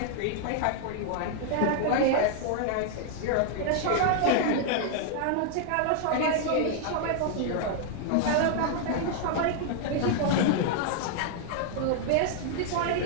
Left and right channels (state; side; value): different; both; correlation 0.00